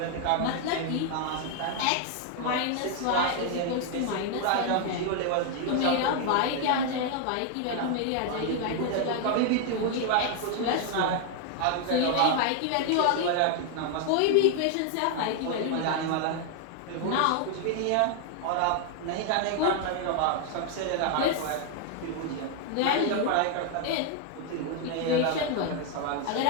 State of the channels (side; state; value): both; different; correlation 0.00